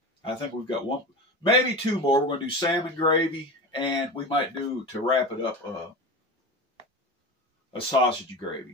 I think we've got one, maybe two more. We're going to do salmon gravy, and we might do, to wrap it up, a sausage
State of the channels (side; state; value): both; normal; correlation 0.28